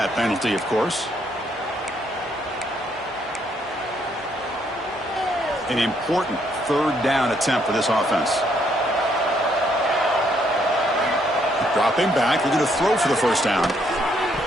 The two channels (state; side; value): normal; both; correlation 0.71